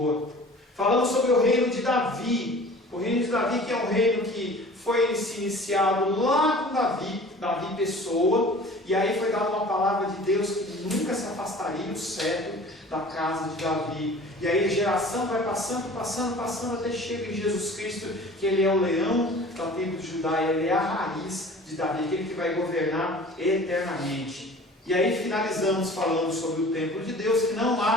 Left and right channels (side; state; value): both; normal; correlation 0.44